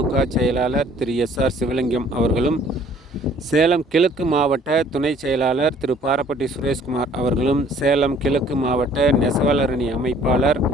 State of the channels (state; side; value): normal; both; correlation 0.56